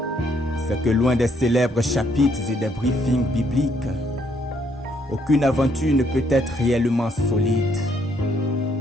C'est que loin des célèbres chapitres et des briefings bibliques, aucune aventure ne peut être réellement solide.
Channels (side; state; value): both; normal; correlation 0.70